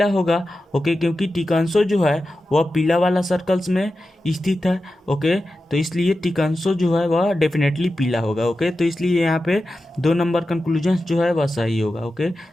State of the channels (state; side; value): normal; both; correlation 0.92